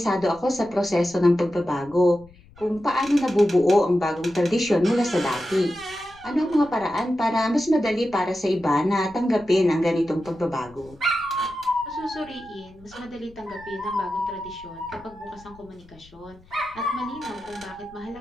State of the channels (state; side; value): noise; left; rumble, 25 dB below the sound